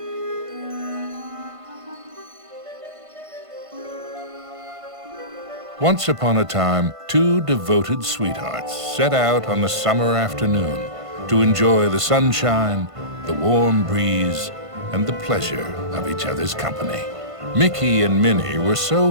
Once upon a time, two devoted sweethearts set out on a summer afternoon to enjoy the sunshine, the warm breeze, and the pleasure of each other's company. Mickey and Minnie were so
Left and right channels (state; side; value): late; left; 1.5 ms